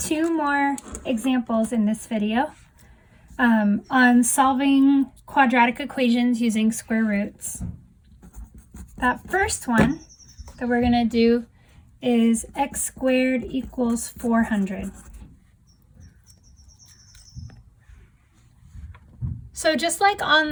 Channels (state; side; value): identical; both; correlation 1.00